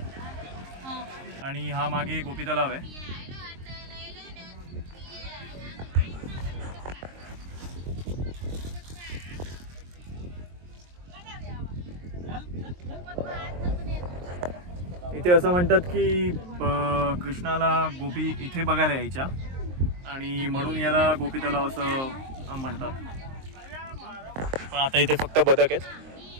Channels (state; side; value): late; left; 23 ms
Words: आणि हा मागे गोपी तलाव आहे. इथे असं म्हणतात की कृष्णाला गोपी इथे बघायला यायच्या आणि म्हणून याला गोपी तलाव असं म्हणतात. पण आता इथे फक्त बदक आहेत.